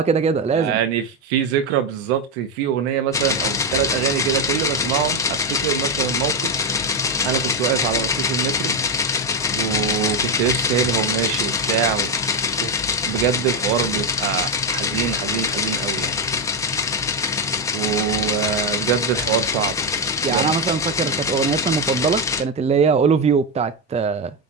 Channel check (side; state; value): both; normal; correlation 0.07